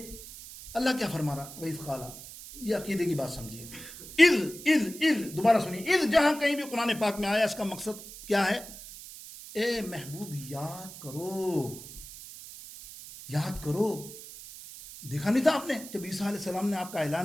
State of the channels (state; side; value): noise; right; hiss, 14 dB below the sound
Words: اللہ کیا فرما رہا، وَإِذْ قَالَ، یہ عقیدے کی بات سمجھیے، اذ دوبارہ سنیے، اذ جہاں کہیں بھی قرآن پاک میں آیا اس کا مقصد کیا ہے؟ اے محبوب یاد کرو، دیکھا نہیں تھا آپ نے جب عیسیٰ علیہ السلام نے آپ کا